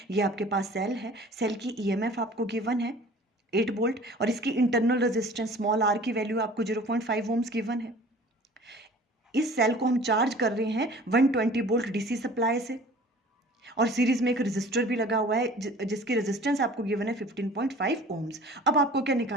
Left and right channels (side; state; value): both; normal; correlation 0.46